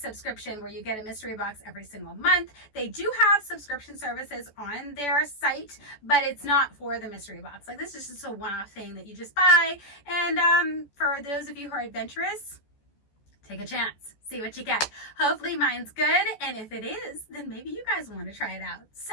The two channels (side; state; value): right; late; 14 ms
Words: where you get a mystery box every single month. They do have subscription services on their site, but it's not for the mystery box. Like, this is just a one-off thing that you just buy. And for those of you who are adventurous, take a chance, see what you get. Hopefully mine's good, and if it is, then maybe you guys want to try it out.